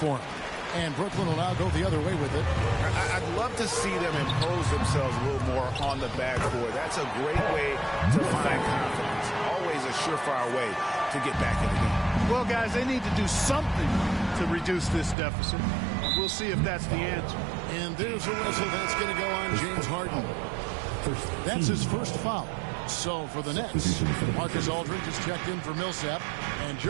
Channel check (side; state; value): left; drops out; at 15.2 s